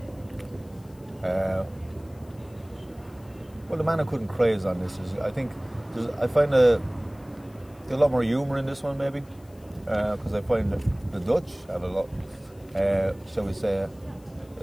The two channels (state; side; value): noise; left; hiss, 29 dB below the sound